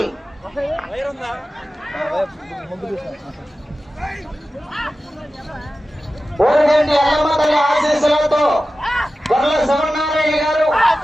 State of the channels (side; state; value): both; normal; correlation 0.94